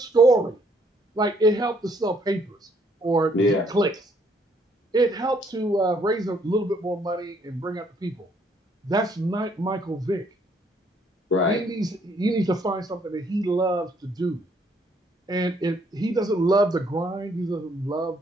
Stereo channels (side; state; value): both; normal; correlation 0.67